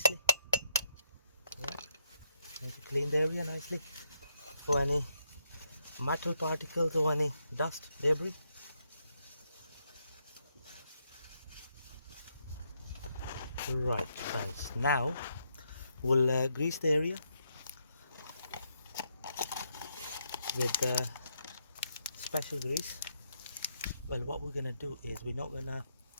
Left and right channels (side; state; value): both; inverted; correlation -0.79